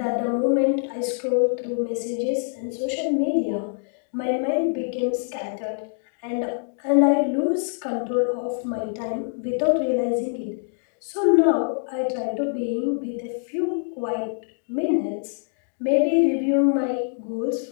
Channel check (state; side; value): silent; right; digital silence